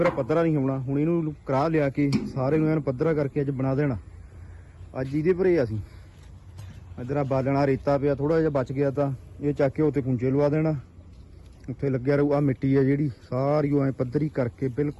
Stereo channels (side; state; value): both; identical; correlation 1.00